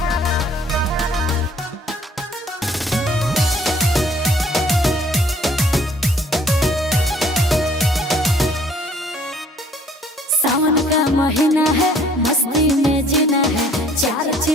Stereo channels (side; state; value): both; normal; correlation 0.58